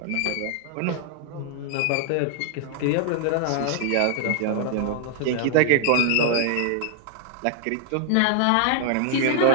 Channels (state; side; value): different; both; correlation 0.00